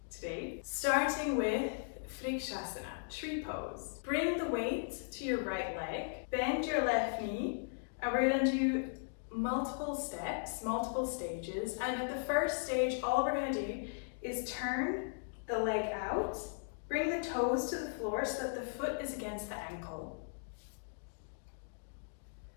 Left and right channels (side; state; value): right; silent; digital silence